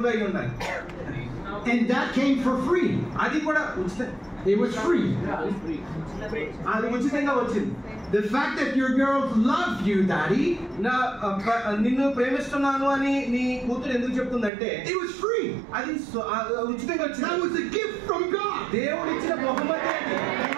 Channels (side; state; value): left; drops out; at 14.5 s